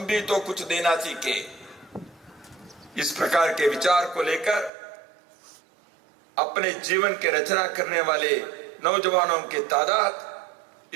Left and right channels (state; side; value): drops out; left; at 4.7 s